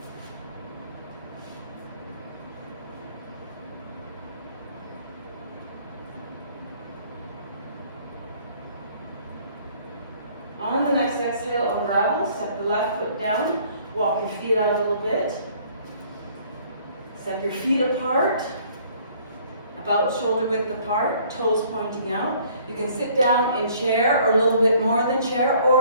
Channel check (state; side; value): inverted; both; correlation -0.58